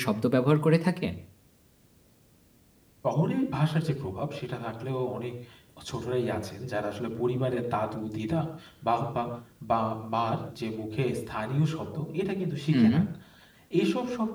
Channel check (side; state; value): both; identical; correlation 1.00